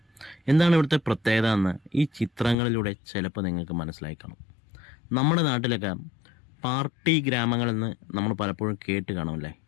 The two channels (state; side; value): drops out; right; at 2.6 s